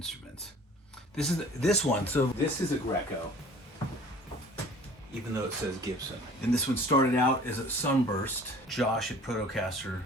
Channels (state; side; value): normal; both; correlation 0.48